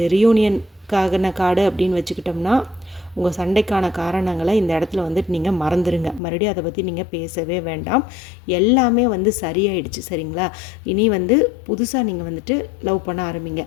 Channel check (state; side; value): drops out; right; at 6.2 s